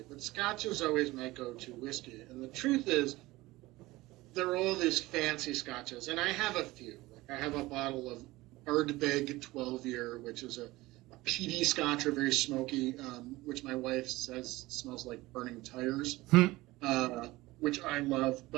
but Scotch is always my go-to whiskey. And the truth is, there are all these fancy Scotches, and I have a few. Like I have a bottle of Ardbeg 12-year, which is a peaty Scotch, or very smoky, which my wife says smells like burning tires, which I love.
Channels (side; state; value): left; quieter; 19.4 dB